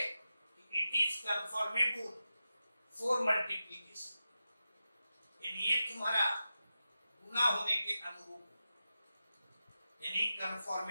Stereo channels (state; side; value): inverted; both; correlation -0.92